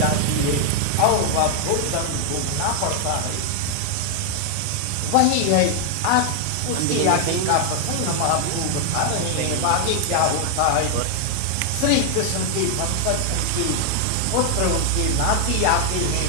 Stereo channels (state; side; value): different; both; correlation 0.00